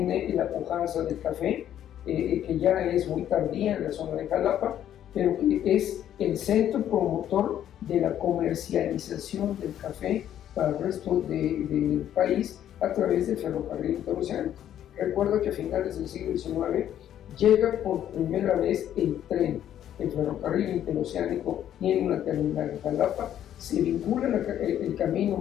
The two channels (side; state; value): right; quieter; 10.8 dB